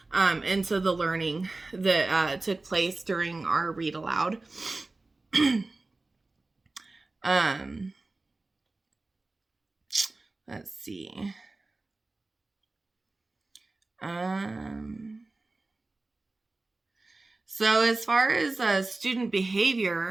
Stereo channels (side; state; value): left; quieter; 3.3 dB